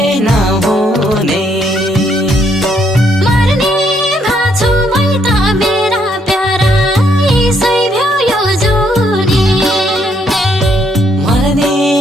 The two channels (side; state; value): both; normal; correlation 0.72